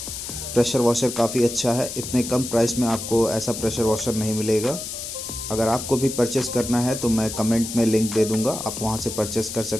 प्रेशर वॉशर काफ़ी अच्छा है, इतने कम प्राइस में आपको ऐसा प्रेशर वॉशर नहीं मिलेगा। अगर आपको भी परचेस करना है तो मैं कमेंट में लिंक दे दूंगा, आप वहां से परचेस कर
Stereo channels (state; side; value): noise; left; hiss, 7 dB below the sound